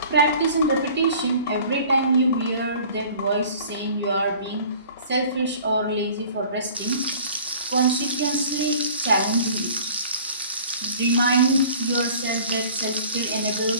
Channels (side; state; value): both; inverted; correlation -0.48